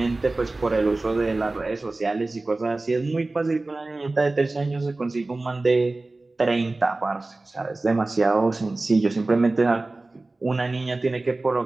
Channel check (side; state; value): left; quieter; 3.1 dB